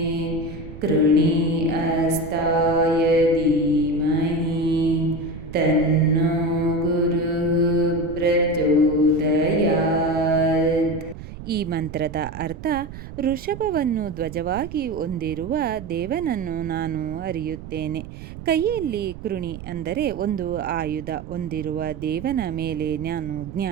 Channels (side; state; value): right; noise; rumble, 12 dB below the sound